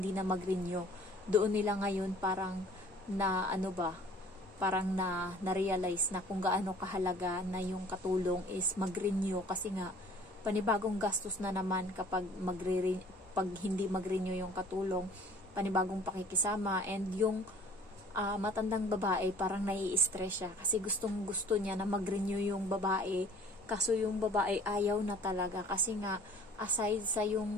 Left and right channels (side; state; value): both; normal; correlation 0.50